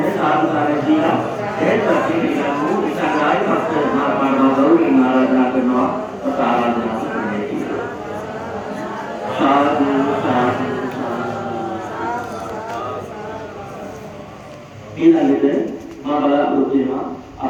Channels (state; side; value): identical; both; correlation 1.00